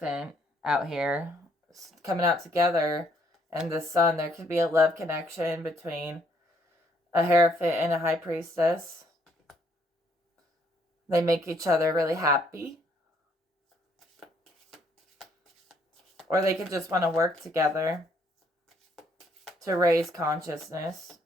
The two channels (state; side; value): normal; both; correlation 0.68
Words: out here, coming out together, and the Sun. There could be a love connection between a Hierophant and a High Priestess. They make each other really happy. Or they could just want to work together to raise consciousness.